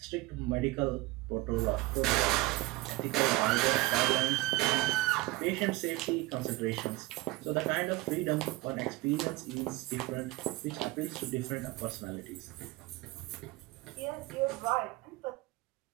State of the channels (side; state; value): left; quieter; 20.8 dB